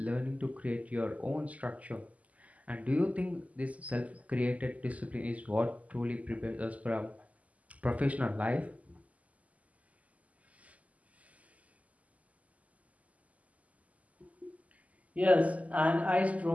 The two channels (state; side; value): late; left; 0.072 ms